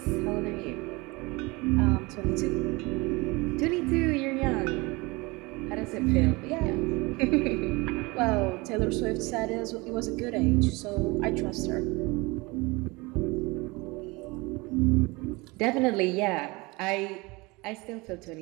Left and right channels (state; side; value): quieter; left; 24.5 dB